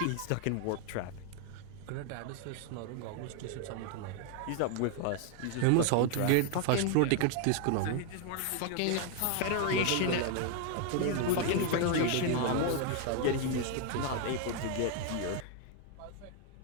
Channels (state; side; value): different; both; correlation 0.00